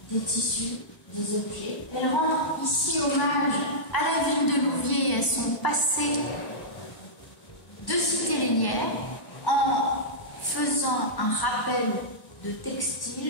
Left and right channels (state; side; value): late; right; 1.0 ms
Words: des tissus, des objets. Elle rend ici hommage à la ville de Louviers et à son passé de cité lénière, en faisant un rappel de